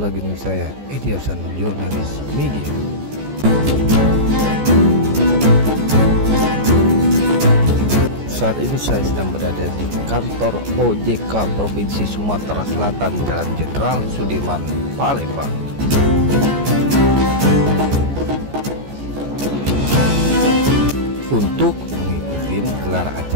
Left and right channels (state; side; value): late; left; 14 ms